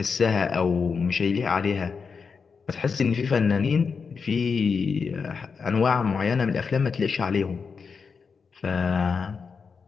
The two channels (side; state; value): right; quieter; 5.5 dB